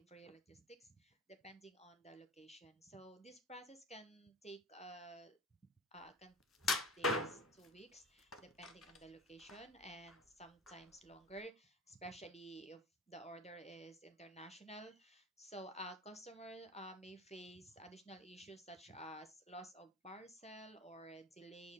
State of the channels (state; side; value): normal; both; correlation 0.34